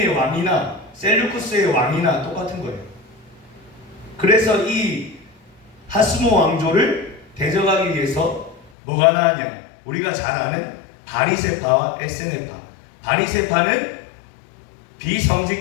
왕이나 셀루쿠스의 왕이나 똑같은 거예요. 그래서 이 하스모 왕조를 대적하기 위해서 뭐가 나왔냐? 우리가 잘 아는 바리새파와 에스네파. 바리새파는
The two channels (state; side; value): drops out; right; at 8.7 s